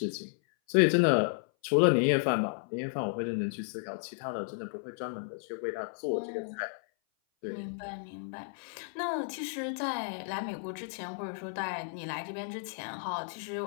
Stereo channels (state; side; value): silent; right; 56 dB below the other